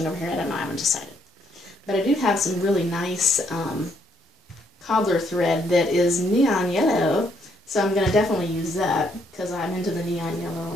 over here. I don't know, I haven't decided. But I do have some really nice cobbler thread that is neon yellow, so I'm going to definitely use that because I'm into the neon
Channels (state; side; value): normal; both; correlation 0.71